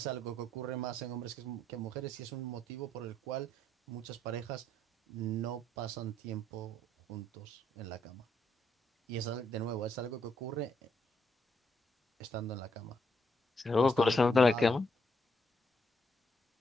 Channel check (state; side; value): normal; both; correlation 0.74